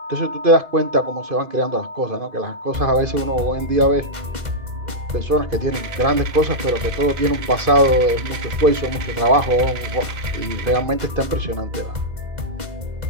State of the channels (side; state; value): left; late; 2.0 ms